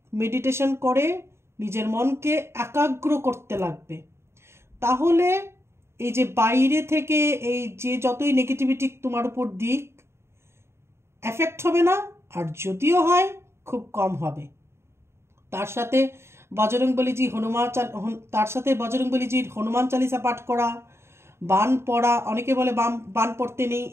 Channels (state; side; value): late; left; 0.12 ms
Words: মেডিটেশন করে নিজের মনকে একাগ্র করতে লাগবে, তাহলে এই যে বাইরে থেকে এই যে যতই নেগেটিভিটি তোমার উপর দিক, এফেক্ট হবে না, আর যদিও হয় খুব কম হবে। তার সাথে বজরংবলীজি হনুমান চালিসা পাঠ করা, বান পড়া, অনেকে বলে বান পড়তে নেই,